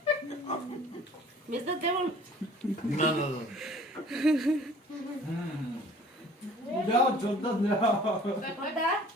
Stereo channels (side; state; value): both; normal; correlation 0.50